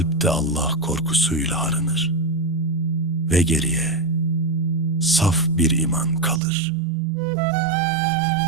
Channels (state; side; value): drops out; left; at 6.4 s